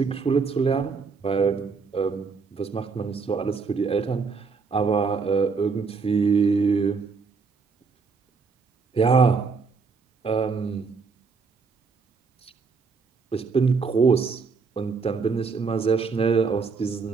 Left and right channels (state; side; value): quieter; left; 4.9 dB